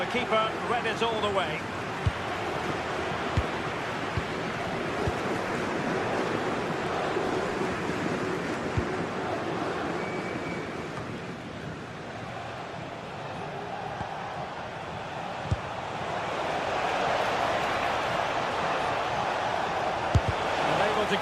keeper read it all the way. Unable to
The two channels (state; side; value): identical; both; correlation 1.00